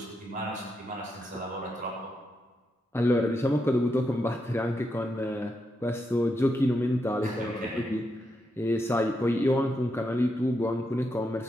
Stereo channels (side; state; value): both; normal; correlation 0.83